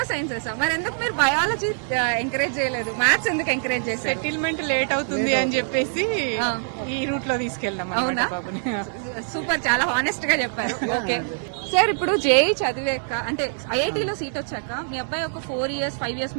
మరి ఎందుకు మీరు బయాలజీ ఎంకరేజ్ చేయలేదు? మ్యాథ్స్ ఎందుకు ఎంకరేజ్ చేశారు? సెటిల్మెంట్ లేట్ అవుతుంది అని చెప్పేసి ఈ రూట్ లో తీసుకెళ్దాం. అవునా? సూపర్, చాలా హానెస్ట్ గా చెప్పారు. ఓకే సార్, ఇప్పుడు జేఈ చదివాక అంటే ఐఐటీలో సీట్ వచ్చాక మీ అబ్బాయి ఒక 4 years 5 years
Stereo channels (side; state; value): left; silent; 62 dB below the other